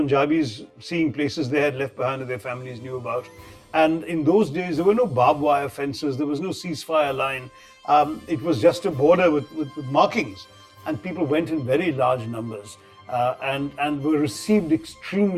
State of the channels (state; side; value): identical; both; correlation 1.00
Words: seeing places they had left behind that their families knew about. And in those days, there were no barbed wire fences, there was no ceasefire line. It was just a border with markings. And people went in very large numbers and were received